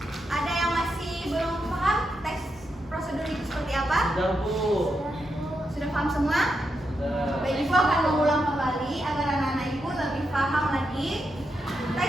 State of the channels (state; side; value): normal; both; correlation 0.85